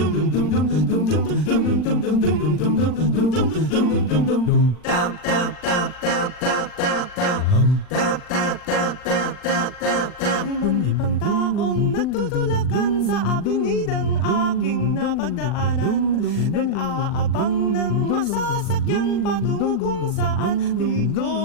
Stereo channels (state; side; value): late; right; 39 ms